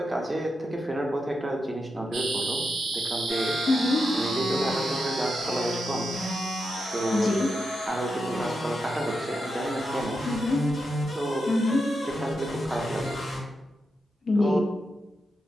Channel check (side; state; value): both; normal; correlation 0.86